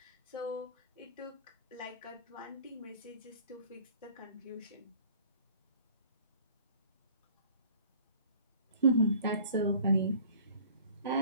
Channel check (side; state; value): both; inverted; correlation -0.50